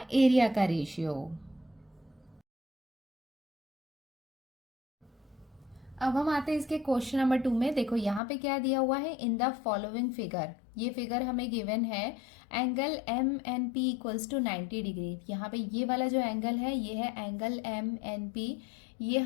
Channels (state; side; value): drops out; right; at 8.2 s